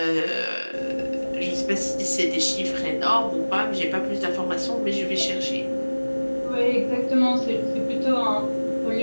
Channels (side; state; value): both; inverted; correlation -1.00